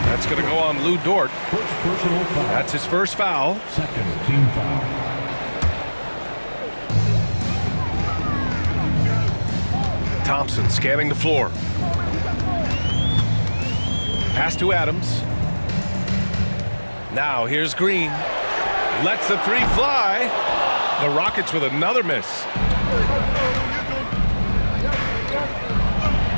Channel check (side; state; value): both; inverted; correlation -1.00